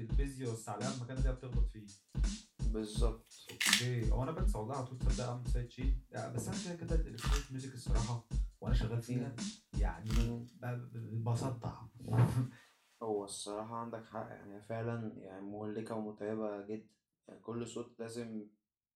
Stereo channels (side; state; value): both; identical; correlation 1.00